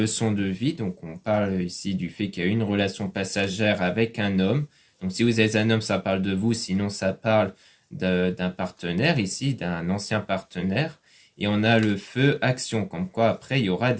de vie. Donc on parle ici du fait qu'il y a une relation passagère avec un homme. Donc si vous êtes un homme, ça parle de vous. Sinon, ça parle d'un partenaire ici, d'un ancien partenaire. Et on a le feu action, comme quoi après, il y aura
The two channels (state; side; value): identical; both; correlation 1.00